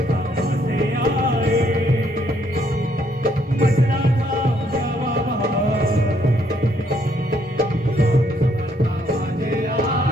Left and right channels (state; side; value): normal; both; correlation 0.70